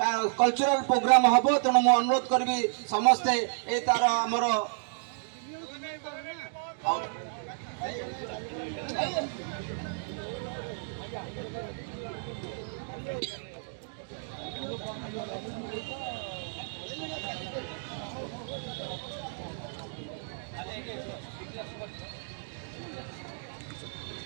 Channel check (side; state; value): left; silent; digital silence